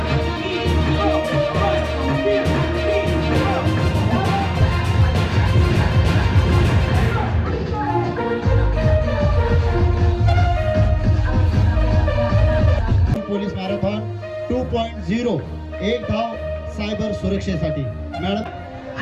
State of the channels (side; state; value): both; identical; correlation 1.00